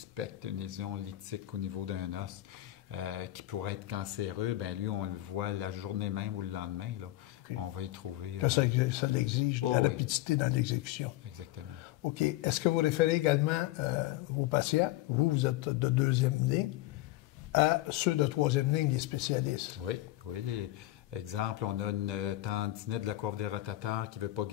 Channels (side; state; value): right; quieter; 16.5 dB